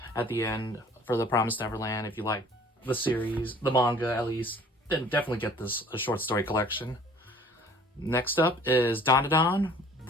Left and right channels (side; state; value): both; normal; correlation 0.51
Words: at the end for The Promised Neverland. If you like the series, the manga at least, then definitely get this a short story collection. Next up is Dandadan,